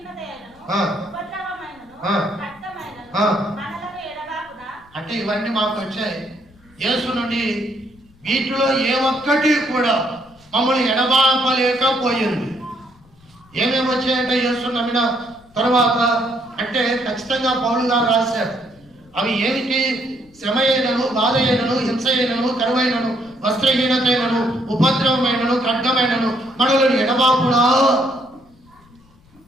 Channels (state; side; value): noise; left; rumble, 29 dB below the sound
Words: ఉపద్రవమైనను రక్తమైనను మనలను ఎడబాకునా. అంటే ఇవన్నీ మాకు వచ్చాయి యేసు నుండి. వీటిలో ఏ ఒక్కటి కూడా మమ్మల్ని ఎడబాపలేకపోయింది. ఏమేమి వచ్చాయంటే యేసు నమ్మిన తర్వాత అంటే ఖచ్చితంగా పౌలు గారు రాశారు. అవి ఏమిటి? శ్రమ అయినను, బాధ అయినను, హింస అయినను, కరువైనను, వస్త్రహీనత అయినను, ఉపద్రవమైనను, ఖడ్గమైనను, మనలను ఎడబాపునా.